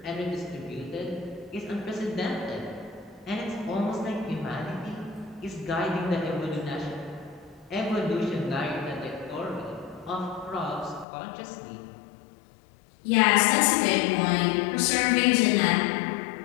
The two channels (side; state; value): right; drops out; at 11.1 s